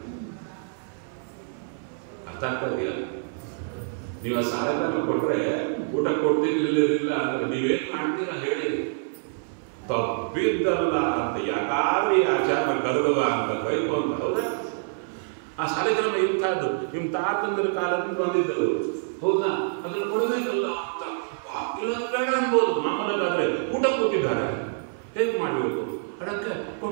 ಅರ್ಥ ಆಗ್ತಾ ಇದೆಯಾ? ನೀವು ಆ ಸಾಲಿಗ್ರಾಮ ಕೊಟ್ಟರೆ ಊಟ ಕೊಡ್ತೀನಿ, ಇಲ್ಲದಿಲ್ಲ ಅಂದ್ರೆ ನೀವೇನು ಮಾಡ್ತೀರಾ ಹೇಳಿ. ತಪ್ಪಿದ್ದಲ್ಲ ಅಂತ ಯಾಕಾದ್ರೂ ಈ ಆಚಾರ ಕರುಗವ ಅಂತ ಬೈಕು ಅಂತ. ಹೌದಾ? ಆ ಸಾಲಿಗ್ರಾಮ ಇಂಥದ್ದು ನಿಮ್ಮ ತಾತಂದ್ರ ಕಾಲದಿಂದ ಬಂದಿದ್ದರು. ಹೌದಾ? ಅದ್ರ ಕೊಡಬೇಕಲ್ಲ ಅಂತ ಬೇಡ ಅನ್ಬೋದು. ಮಾಮೂಲಾದ್ರೆ ಊಟ ಕೂತಿದ್ದಾರೆ, ಹೇಗೆ ಮಾಡಬೇಕು? ಅದಕ್ಕೆ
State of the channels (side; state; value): left; silent; 58 dB below the other